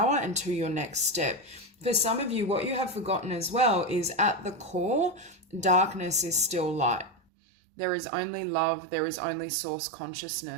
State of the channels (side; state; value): left; drops out; at 7.2 s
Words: and to your next step. For some of you, what you have forgotten as well is, at the core, darkness is still light. There is only love, there is only source